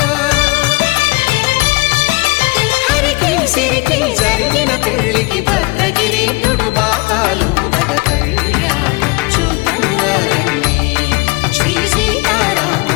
హరికి సిరికి జరిగిన పెళ్లికి భద్రగిరి బాకాలు నగ కళ్యాణం చూతమురారండి శ్రీ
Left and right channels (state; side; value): quieter; right; 26.4 dB